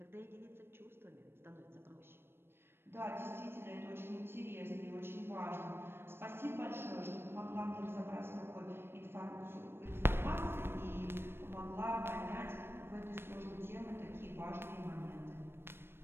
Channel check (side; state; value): left; late; 0.11 ms